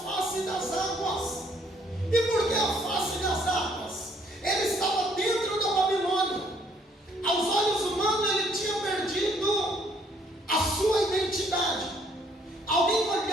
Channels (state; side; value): normal; both; correlation 0.64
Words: das águas. E por que a face das águas?